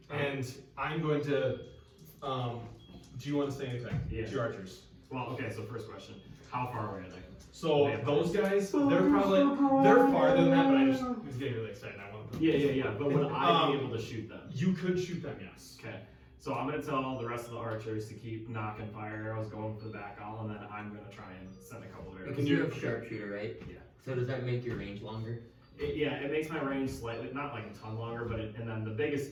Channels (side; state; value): both; identical; correlation 1.00